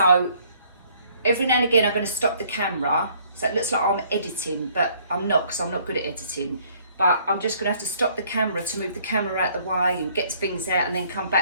every now and again I'm going to stop the camera So it looks like I'm editing, but I'm not, because I'm not good at editing. But I'm just going to have to stop the camera to move the camera out the way and get things out and then come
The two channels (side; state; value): both; inverted; correlation -0.62